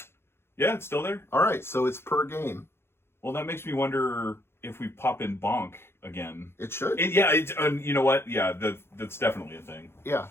Yeah, it's still there. All right, so it's per game. Well, that makes me wonder if we pop in bonk again. It should. Yeah, you know what? Yeah, that's definitely a thing. Yeah.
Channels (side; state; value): right; late; 0.12 ms